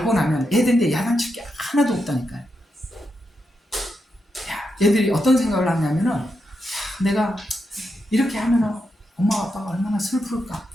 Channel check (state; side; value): normal; both; correlation 0.85